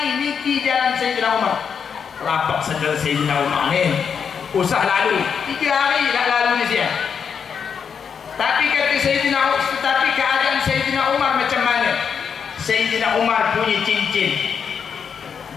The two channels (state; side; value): quieter; right; 6.8 dB